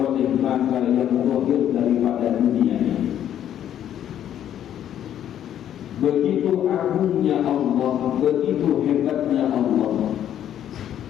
mata yang zahir daripada dunia ini. Begitu agungnya Allah, begitu hebatnya Allah,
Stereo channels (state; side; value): quieter; right; 10.5 dB